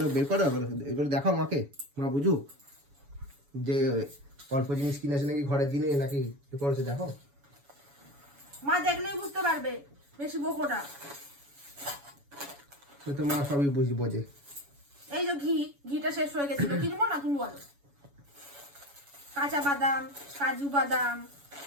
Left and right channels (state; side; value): late; left; 7.1 ms